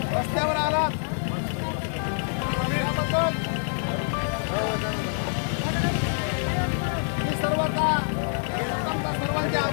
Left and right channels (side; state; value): right; silent; 61 dB below the other